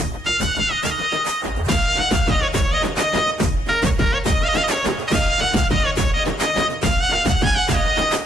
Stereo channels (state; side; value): normal; both; correlation 0.76